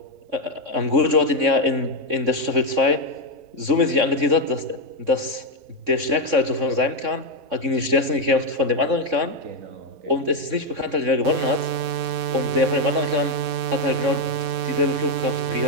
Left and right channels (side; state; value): left; late; 3.6 ms